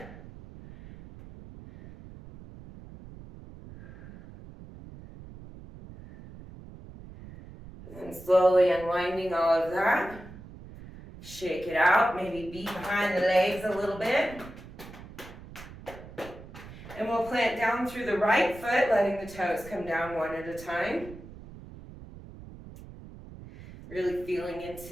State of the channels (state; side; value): noise; right; rumble, 16 dB below the sound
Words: And slowly unwinding all of that. Shake it out, maybe beat behind the legs a little bit. And we'll plant down through the right foot, letting the toes come down one at a time. Really feeling